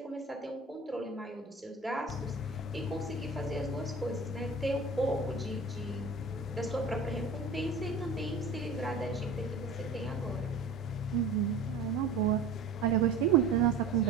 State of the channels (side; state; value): left; quieter; 3.4 dB